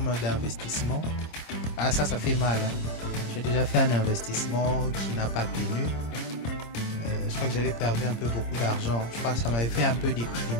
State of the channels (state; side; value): late; right; 26 ms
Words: d'investissement. Ah, ça fait mal. Hein. J'ai déjà fait un investissement qui n'a pas tenu. Je crois que j'avais perdu un peu beaucoup d'argent. Je crois que ça m'avait fait un peu